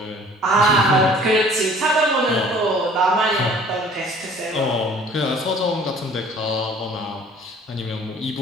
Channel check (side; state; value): both; normal; correlation 0.51